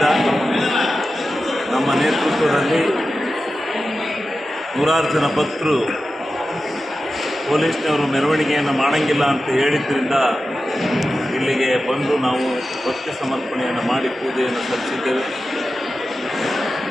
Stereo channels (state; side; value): normal; both; correlation 0.93